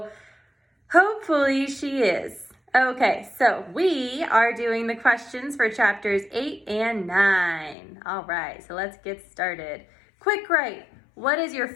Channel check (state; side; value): drops out; right; at 7.8 s